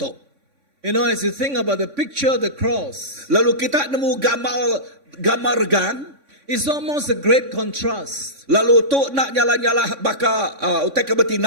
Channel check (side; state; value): left; late; 3.6 ms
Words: You know, as you think about the picture of the cross, Lalu kita nemu gambar regang. it's almost a great contrast. Lalu tu nak nyala-nyala baka utai ke